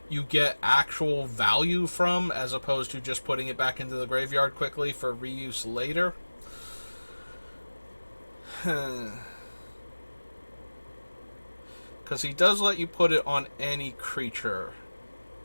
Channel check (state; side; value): inverted; both; correlation -1.00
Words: you get actual value from, as opposed to just putting it back into the graveyard quickly for reuse later. Because he does let you put it on any creature.